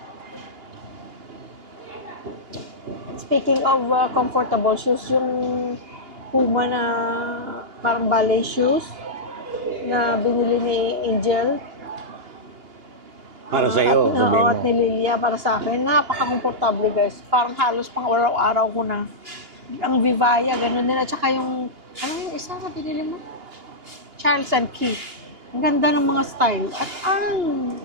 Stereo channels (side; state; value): left; late; 2.8 ms